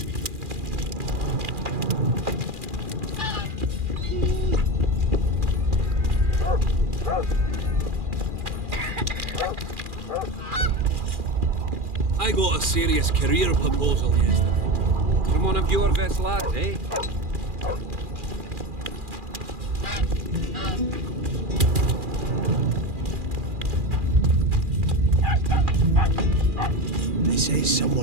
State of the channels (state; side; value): late; left; 2.4 ms